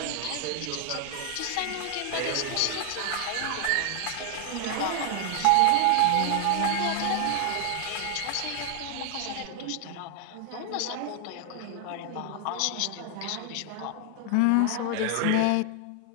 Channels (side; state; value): both; different; correlation 0.00